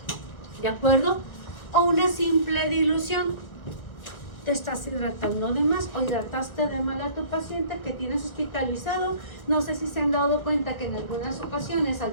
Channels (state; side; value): late; right; 1.5 ms